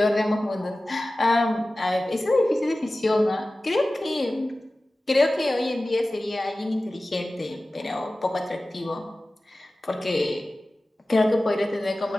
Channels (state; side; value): normal; both; correlation 0.96